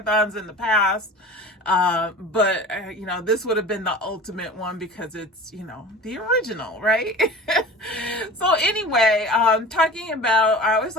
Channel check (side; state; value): both; normal; correlation 0.37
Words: in the past, but this would have been the ultimate one because it's, the original, right? So anyway, I always